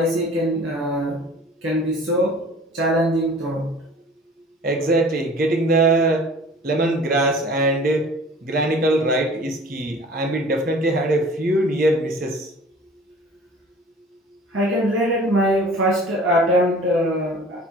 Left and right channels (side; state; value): both; normal; correlation 0.46